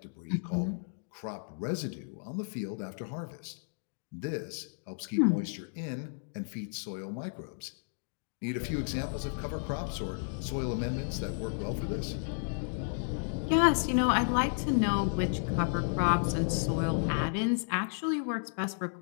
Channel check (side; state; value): right; silent; digital silence